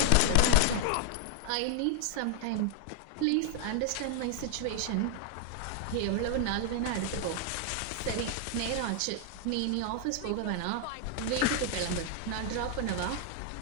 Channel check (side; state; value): both; different; correlation 0.00